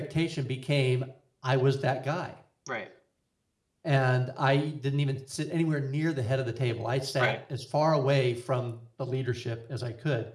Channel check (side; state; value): both; identical; correlation 1.00